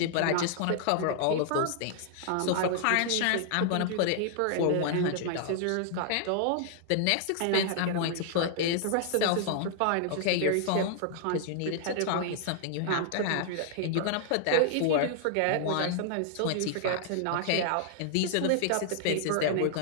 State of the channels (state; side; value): different; both; correlation -0.01